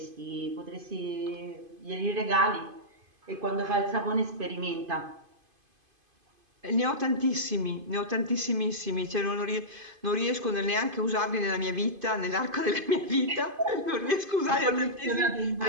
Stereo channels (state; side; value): late; left; 2.5 ms